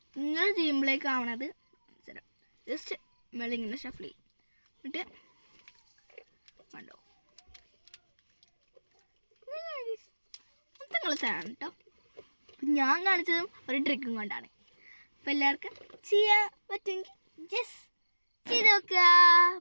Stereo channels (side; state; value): both; inverted; correlation -1.00